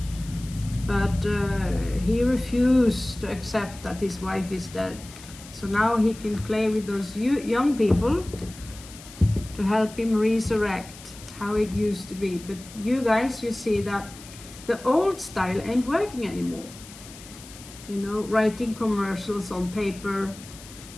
But he refused to accept that his wife is dead. So now he can play with those young people to help him resurrect how it used to be. But you guys, you see that the old style ain't working anymore. You know, writing commercials on paper.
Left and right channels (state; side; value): noise; left; hiss, 18 dB below the sound